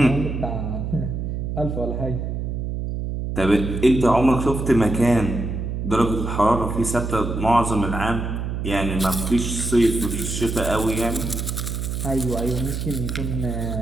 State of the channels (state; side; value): noise; right; hum, 3 dB below the sound